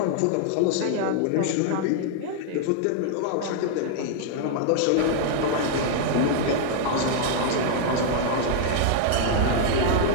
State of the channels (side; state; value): both; different; correlation -0.01